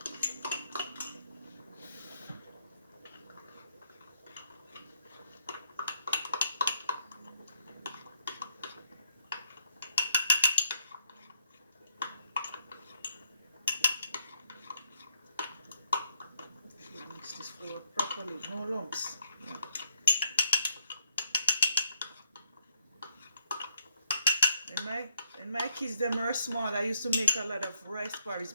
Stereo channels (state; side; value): inverted; both; correlation -0.71